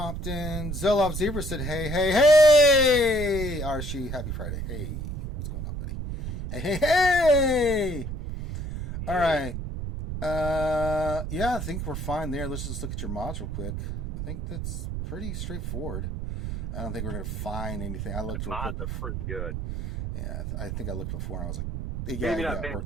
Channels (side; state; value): right; noise; rumble, 4 dB below the sound